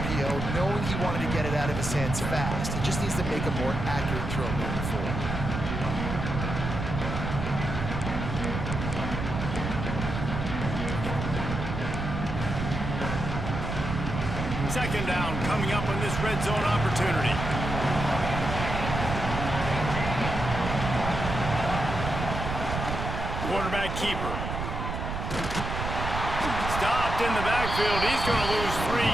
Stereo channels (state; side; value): noise; right; rumble, 4 dB below the sound